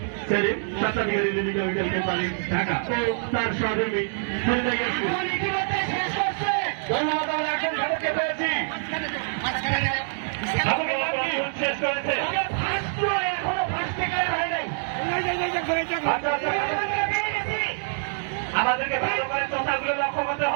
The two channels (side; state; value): left; silent; digital silence